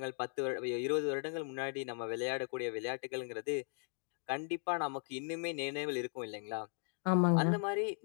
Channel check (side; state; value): right; silent; 53 dB below the other